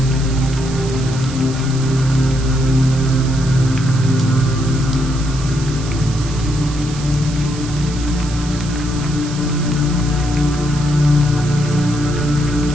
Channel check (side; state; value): right; noise; hiss, 14 dB below the sound